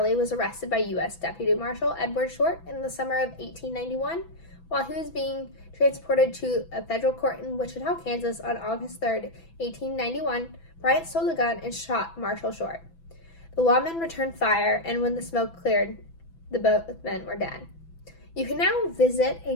was arrested by U.S. Deputy Marshal Edward Short in the summer of 1891 while he was being transported to a federal court in Wichita, Kansas on August 3rd, 1891, Bryant stole a gun and shot Marshall Short. The lawman returned fire, and when the smoke cleared, both men were dead. You can now visit a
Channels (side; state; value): right; late; 6.0 ms